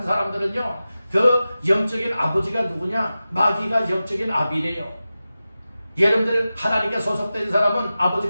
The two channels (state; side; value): inverted; both; correlation -0.94